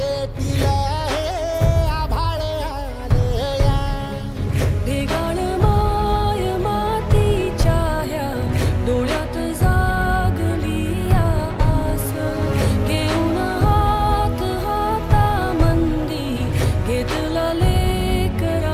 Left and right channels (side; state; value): both; identical; correlation 1.00